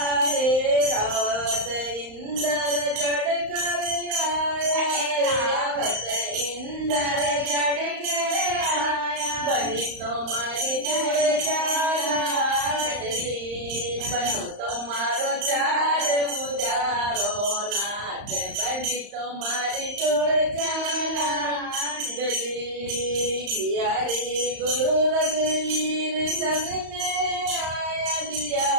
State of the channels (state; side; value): late; left; 35 ms